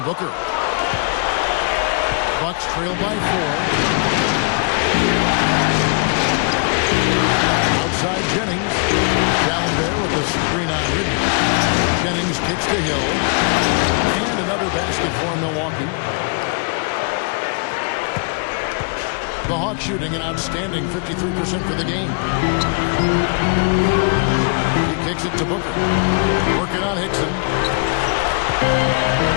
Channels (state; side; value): quieter; right; 38.9 dB